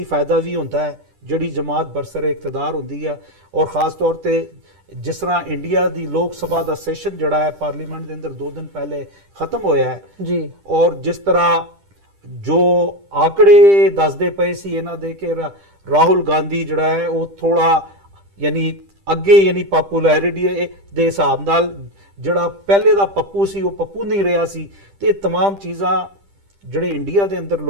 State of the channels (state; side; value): late; left; 10 ms